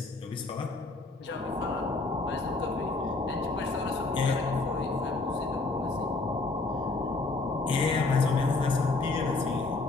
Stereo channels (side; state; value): right; quieter; 3.5 dB